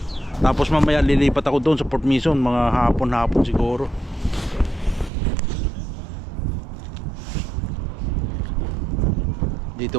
Tapos mamaya lilipat ako doon sa Port Mason, mga hapon siguro.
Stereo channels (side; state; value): left; drops out; at 5.1 s